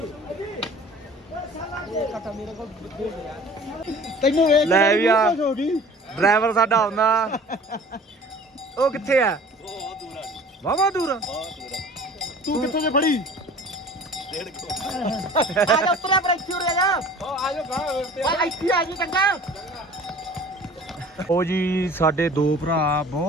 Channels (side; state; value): both; normal; correlation 0.45